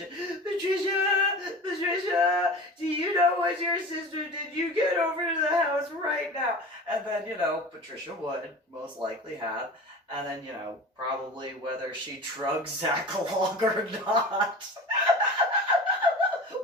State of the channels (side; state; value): both; normal; correlation 0.35